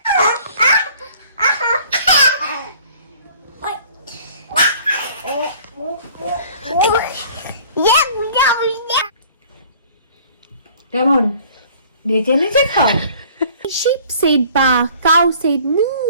কেমন নেচে নেচে খাও? Sheep said ba, cow said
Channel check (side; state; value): both; inverted; correlation -0.52